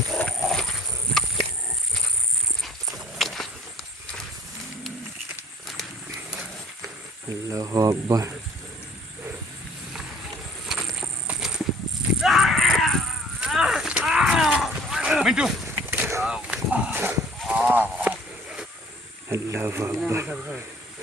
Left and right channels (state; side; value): normal; both; correlation 0.54